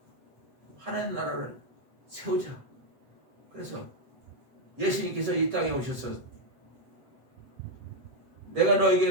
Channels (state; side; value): late; left; 7.8 ms